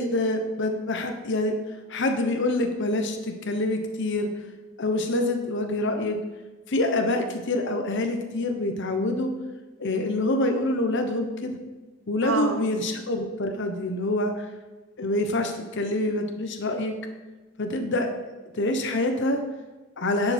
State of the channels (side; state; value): both; normal; correlation 0.21